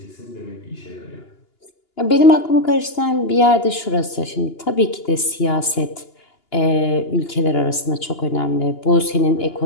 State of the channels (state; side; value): late; right; 2.9 ms